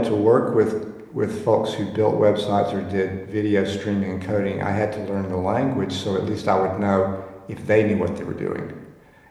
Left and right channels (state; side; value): identical; both; correlation 1.00